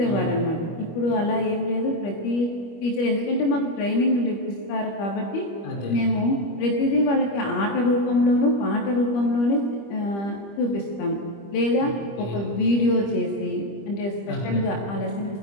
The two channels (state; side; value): late; right; 25 ms